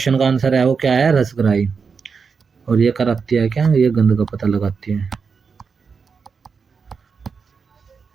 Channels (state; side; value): quieter; left; 5.5 dB